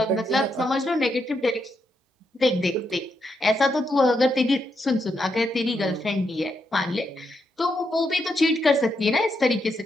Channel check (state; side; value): normal; both; correlation 0.81